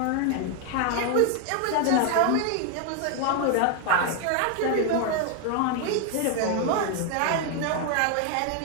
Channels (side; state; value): both; different; correlation 0.01